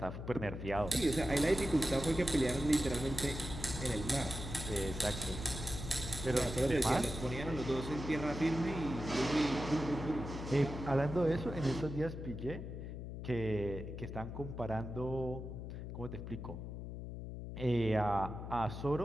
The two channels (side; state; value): left; noise; hum, 7 dB below the sound